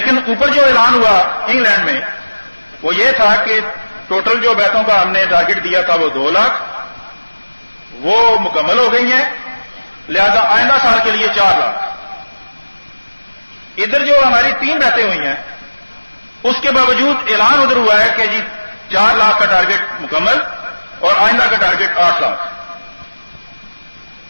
اوپر جو اعلان ہوا انگلینڈ میں وہ یہ تھا کہ ٹوٹل جو بیتوں کا ہم نے ٹارگٹ دیا تھا وہ 2 لاکھ، وہ مکمل ہو گئی ہیں، لہذا آئندہ سال کے لیے 4 لاکھ. ادھر جو ہماری 3 بیتیں ہوئی ہیں اس کے باوجود اعلان ادھر ہوا ہے کہ جی 4 لاکھ کا ٹارگٹ مکمل اور آئندہ کا ٹارگٹ 8 لاکھ.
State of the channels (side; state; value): both; inverted; correlation -1.00